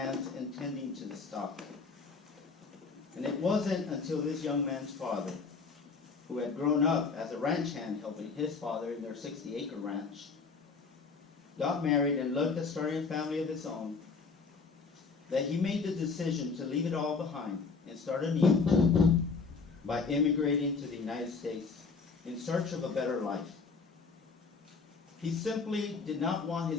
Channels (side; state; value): right; quieter; 4.7 dB